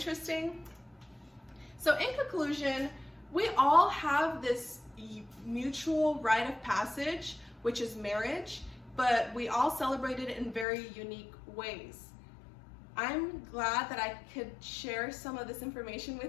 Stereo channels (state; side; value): drops out; right; at 10.7 s